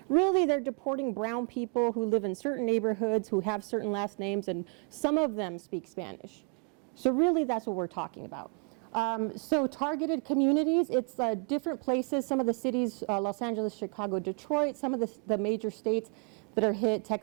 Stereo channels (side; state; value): left; quieter; 37.7 dB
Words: Really, they're deporting brown people who live in certain neighborhoods, who have certain last names, and some of them speak Spanish. So really, that's what we're talking about. So targeted communities, it's different places, some of the cities, Los Angeles, Chicago, Detroit, some of the major states that are hit,